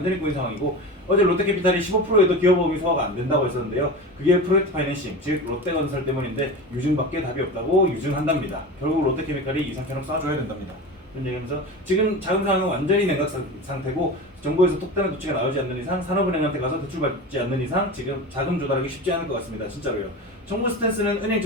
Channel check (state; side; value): normal; both; correlation 0.29